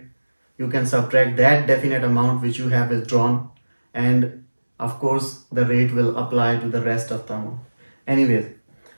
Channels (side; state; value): both; inverted; correlation -1.00